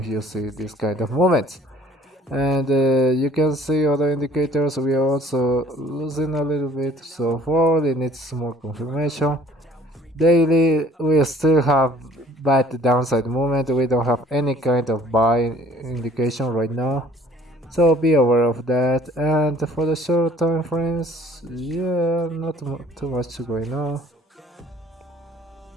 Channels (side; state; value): both; normal; correlation 0.54